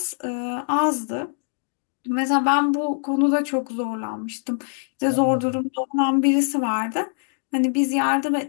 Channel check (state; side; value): silent; right; digital silence